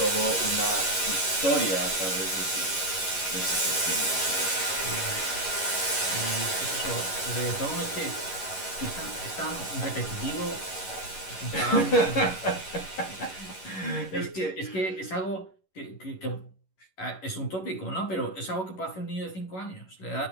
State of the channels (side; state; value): right; late; 11 ms